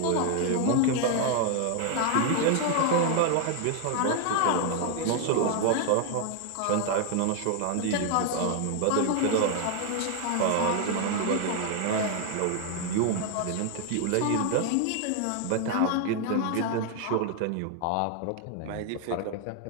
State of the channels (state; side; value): different; both; correlation 0.00